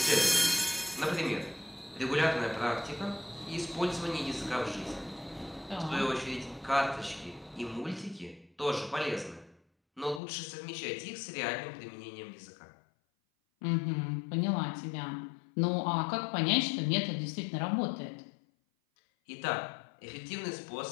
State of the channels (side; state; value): right; drops out; at 10.2 s